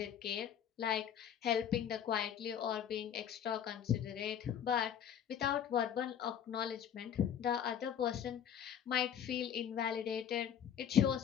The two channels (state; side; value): quieter; right; 9.0 dB